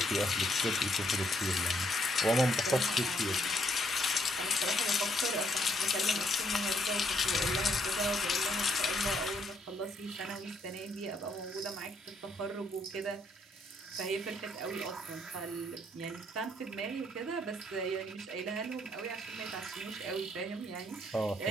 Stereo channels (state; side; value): normal; both; correlation 0.70